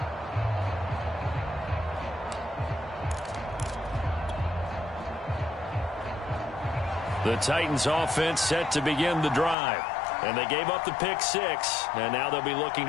The Titans offense set to begin the drive. And they gave up the pick six, and now they'll be looking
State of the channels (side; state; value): right; drops out; at 9.6 s